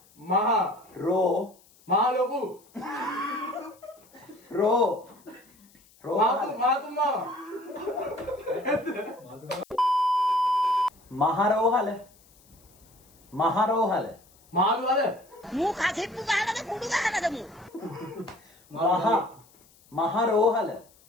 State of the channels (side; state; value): left; noise; hiss, 29 dB below the sound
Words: මහා රෝ මහා ලොකු රෝ මාතු මාව මහරෝහල මහරෝහල මාළු අද මූ කසෙප්පු ගහනද කුඩු ගහනද මූ මහරෝහල